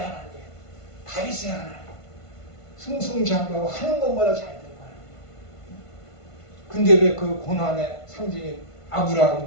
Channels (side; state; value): right; late; 1.5 ms